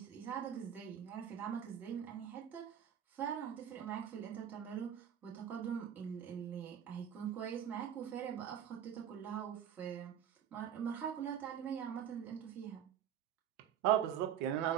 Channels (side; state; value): left; quieter; 9.4 dB